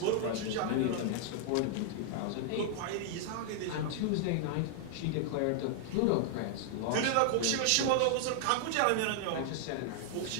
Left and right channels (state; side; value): different; both; correlation -0.01